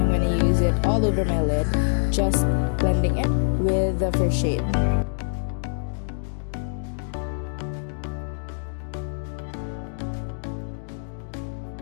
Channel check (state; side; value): silent; right; digital silence